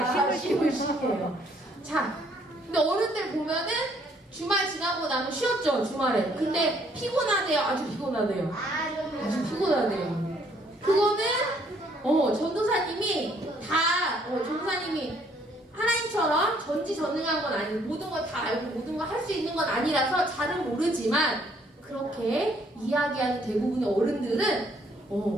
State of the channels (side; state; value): both; normal; correlation 0.65